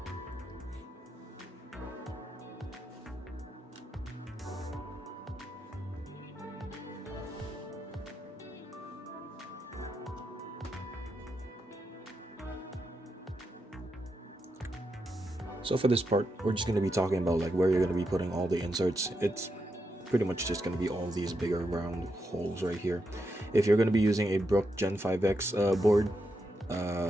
So for this part, we're just going to be talking about like where you're going to be putting all the inserts. It's pretty much just going to be all these bigger round holes right here. If you're going to be using a Brook Gen 5X board,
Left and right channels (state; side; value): normal; both; correlation 0.84